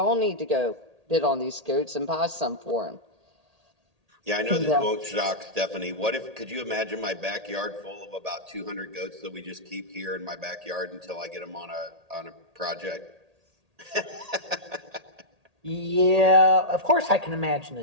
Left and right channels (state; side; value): late; left; 1.8 ms